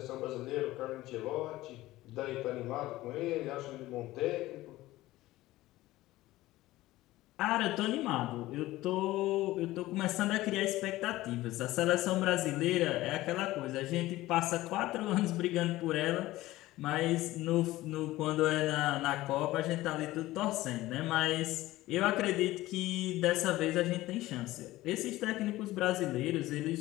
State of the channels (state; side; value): quieter; right; 17.1 dB